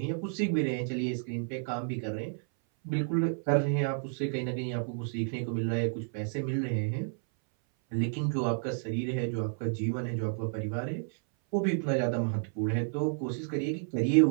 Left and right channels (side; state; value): left; silent; 57 dB below the other